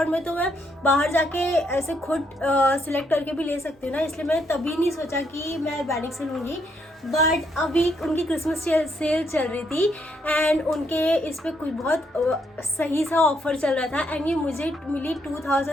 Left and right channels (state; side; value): normal; both; correlation 0.74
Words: में तो मैं बाहर जाके ऐसे खुद सिलेक्ट करके भी ले सकती हूँ ना, इसलिए मैंने तभी नहीं सोचा कि मैं अर्बैनिक से लूँगी। बट अभी उनकी क्रिसमस सेल चल रही थी एंड उनके इस पर कुछ बहुत सही सा ऑफर चल रहा था एंड ये मुझे मिली